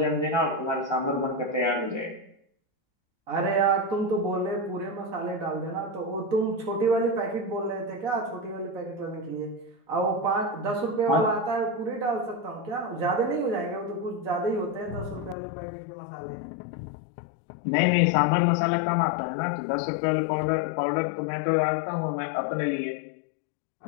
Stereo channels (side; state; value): right; drops out; at 15.4 s